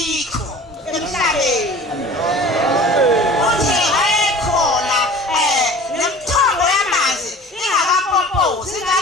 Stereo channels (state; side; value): normal; both; correlation 0.42